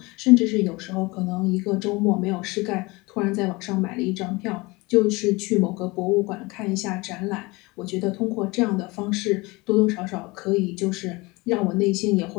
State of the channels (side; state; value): right; quieter; 23.9 dB